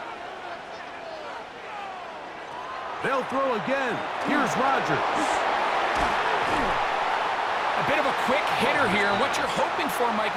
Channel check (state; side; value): identical; both; correlation 1.00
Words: They'll throw again. Here's Rodgers. A bit of a quick hitter here. What you're hoping for, Mike,